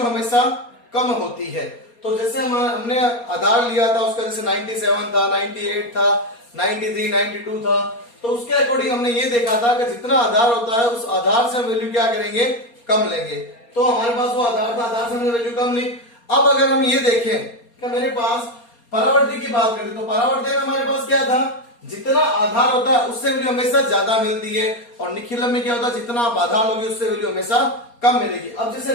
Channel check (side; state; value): right; late; 4.3 ms